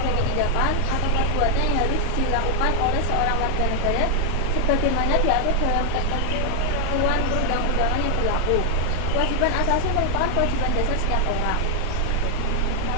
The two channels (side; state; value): both; different; correlation 0.00